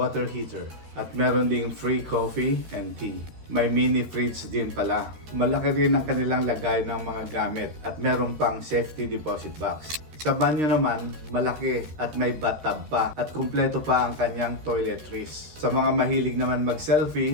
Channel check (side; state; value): left; late; 13 ms